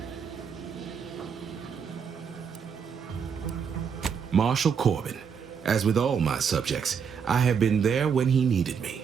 Marshal Corbin. As with all my subjects, I have been there when he needed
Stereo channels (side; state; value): left; quieter; 6.7 dB